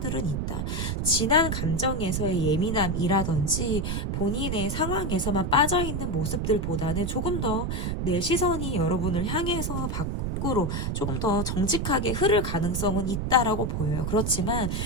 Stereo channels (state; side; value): noise; right; rumble, 1 dB below the sound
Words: 있다. 지난 감정에서의 예민함이라든지 본인의 상황에서만 빠져있는 모습들보다는 조금 더 내 시선이 여러분을 향해서 밖으로 조금 더 정직하게 흐를 가능성은 있다라고 보여요. 그렇지만